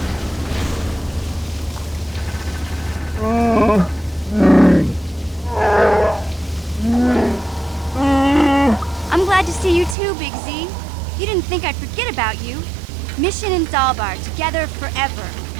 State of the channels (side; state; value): left; drops out; at 10.0 s